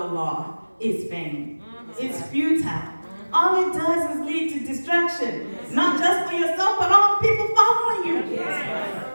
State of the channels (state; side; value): inverted; both; correlation -1.00